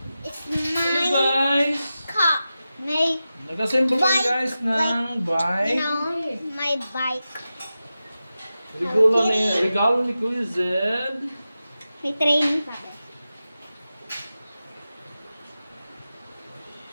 It's Hello my guys! car. My, Nag-assemble kami Bike. guys ng bike. my bike. Regalo ni Kuya Zed. May training pa.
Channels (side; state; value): both; inverted; correlation -0.93